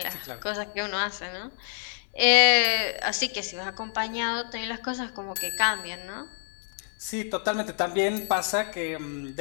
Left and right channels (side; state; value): right; silent; 60 dB below the other